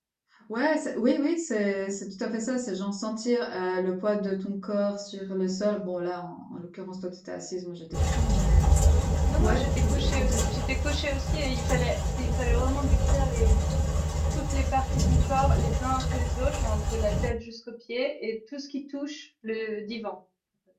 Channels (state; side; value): identical; both; correlation 1.00